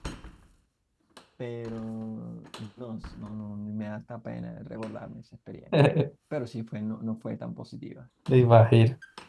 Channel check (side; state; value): both; identical; correlation 1.00